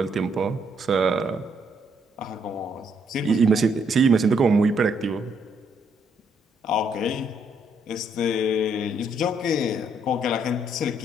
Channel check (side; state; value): both; normal; correlation 0.71